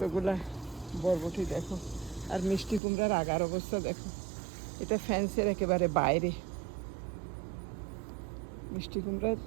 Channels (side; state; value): left; drops out; at 2.8 s